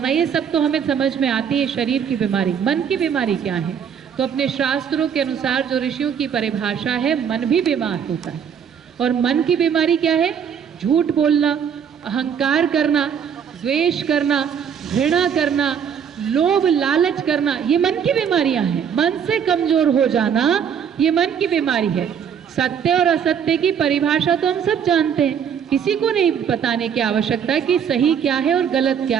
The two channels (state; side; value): quieter; left; 7.8 dB